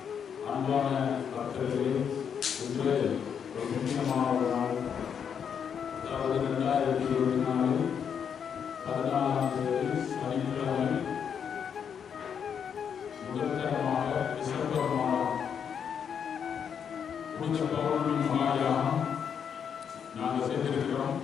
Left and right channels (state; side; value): quieter; right; 7.5 dB